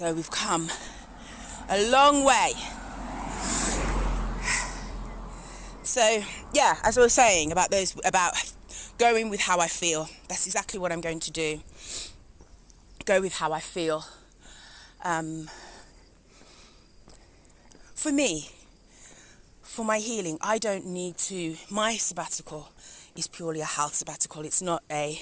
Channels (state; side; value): identical; both; correlation 1.00